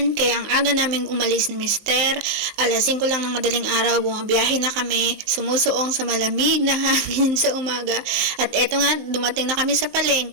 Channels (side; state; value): left; late; 19 ms